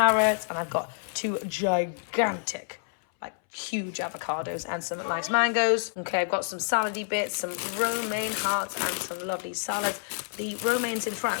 and I've got 2 gigantic, like huge avocados and some nice mangoes. Okay, I've got some salady bits, some romaine hearts, and some lovely salads. The romaines in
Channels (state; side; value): silent; right; 59 dB below the other